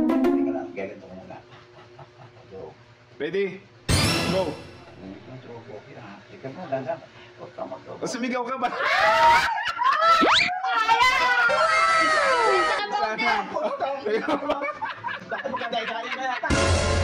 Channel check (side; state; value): both; identical; correlation 1.00